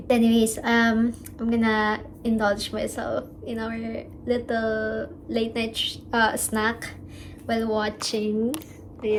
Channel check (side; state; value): both; identical; correlation 1.00